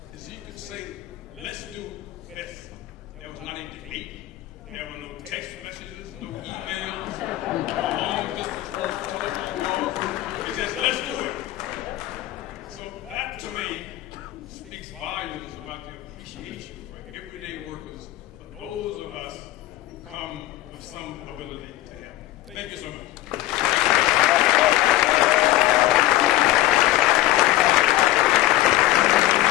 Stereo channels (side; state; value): right; quieter; 15.7 dB